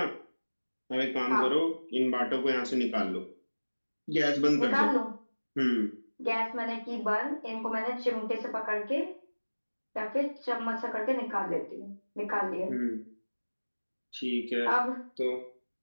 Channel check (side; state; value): both; inverted; correlation -1.00